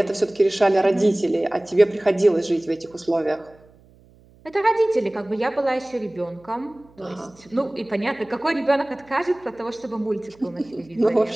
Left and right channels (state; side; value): noise; right; hum, 28 dB below the sound